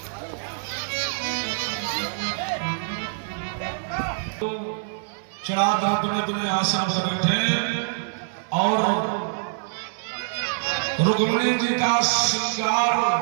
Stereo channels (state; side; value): silent; left; digital silence